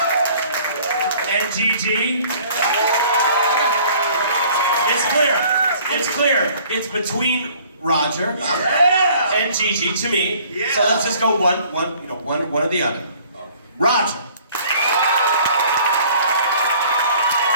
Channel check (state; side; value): inverted; both; correlation -0.55